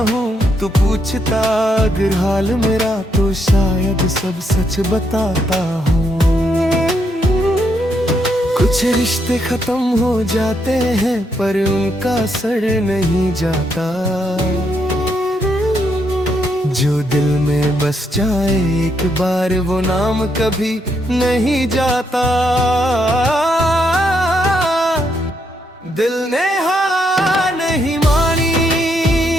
हूँ, तू पूछता अगर हाल मेरा तो शायद सब सच बताता हूँ। कुछ रिश्ते खत्म हो जाते हैं पर उनका असर नहीं जाता, जो दिल में बस जाए एक बार वो नाम कभी नहीं जाता। दिल ने हार नहीं मानी,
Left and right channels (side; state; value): both; normal; correlation 0.77